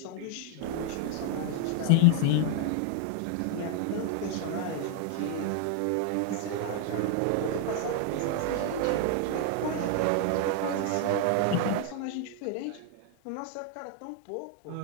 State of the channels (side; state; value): both; different; correlation 0.00